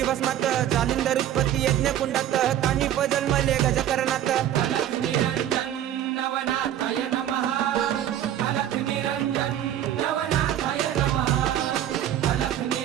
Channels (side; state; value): left; quieter; 11.3 dB